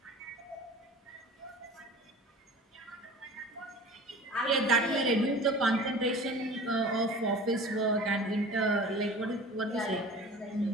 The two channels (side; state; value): both; normal; correlation 0.40